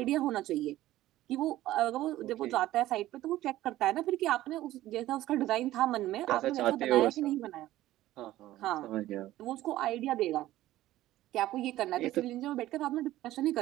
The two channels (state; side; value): quieter; left; 15.1 dB